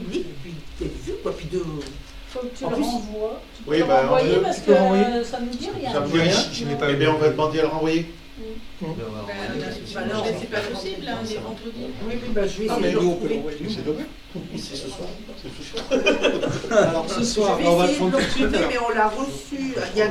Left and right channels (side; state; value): both; identical; correlation 1.00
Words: Puis Faut que tu en le plus, renvoies. Tu oui, peux le renvoyer parce que ça nous dit rien. Ça me dit rien. Eh bien, on va demander à le renvoyer. Non, c'est pas possible, hein, les vendredis. Oui, je vais essayer de le retrouver. C'est demain. C'est ce soir. Alors ce soir, Je vais on va le essayer de prendre le tout de suite. retrouver, alors. mais on l'a reçu il y a